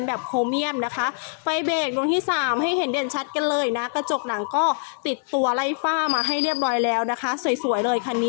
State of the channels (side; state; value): right; silent; digital silence